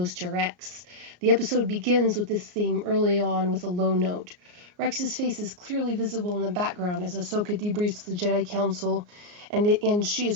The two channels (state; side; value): late; left; 34 ms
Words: to Rex. The episode begins with this theme early on with a low note. Rex's face is clearly visible in the background as Ahsoka debriefs the Jedi Council, and she